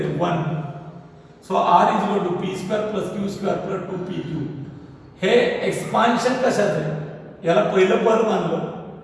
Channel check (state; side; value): identical; both; correlation 1.00